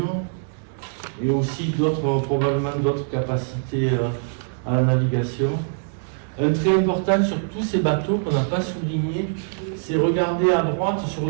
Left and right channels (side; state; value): left; silent; digital silence